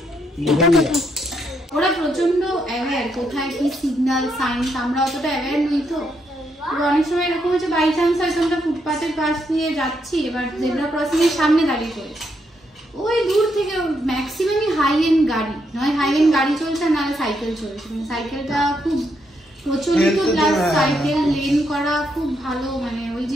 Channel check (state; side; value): normal; both; correlation 0.78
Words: এটা কোথায়? ওরা প্রচন্ড অ্যাওয়্যার কোথায় কি সিগন্যাল সাইন্স, আমরা অতটা অ্যাওয়্যার নই তো। অনেক সময় এরকম হচ্ছে বাই চান্স হয়তো আমরা ফুটপাথের পাশ দিয়ে যাচ্ছি, এবার জেব্রা ক্রসিং এর সামনে দাঁড়িয়ে পড়েছি, ওই দূর থেকে ম্যাক্সিমামই হাই এন্ড গাড়ি, নয় হাই এন্ড গাড়ি চলছে না সাইকেল চলছে। মানে সাইকেলটা খুব প্রচলিত, প্লাস সাইকেল লেন করা খুব ভালো, মানে ওই